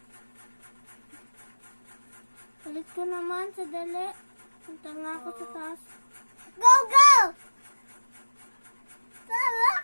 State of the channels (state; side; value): inverted; both; correlation -1.00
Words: Palit ko naman sa dali. Punta nga ako sa taas. Go, go!